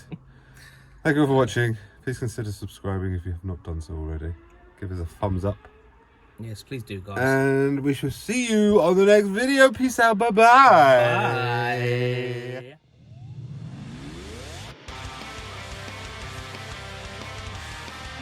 thank you all for watching. Please consider subscribing if you have not done so already. Give us a thumbs up. Yes, please do, guys. And we shall see you on the next video. Peace out. Bye-bye. Bye.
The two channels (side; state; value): both; identical; correlation 1.00